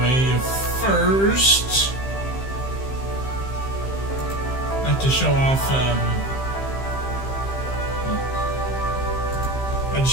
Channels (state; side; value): late; right; 15 ms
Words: first, I'd like to show off, a